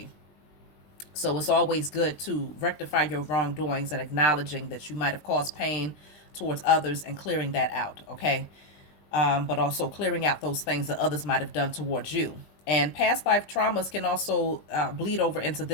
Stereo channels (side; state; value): right; late; 20 ms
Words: So it's always good to rectify your wrongdoings and acknowledging that you might have caused pain towards others and clearing that out, okay? But also clearing out those things that others might have done towards you. And past life traumas can also bleed over into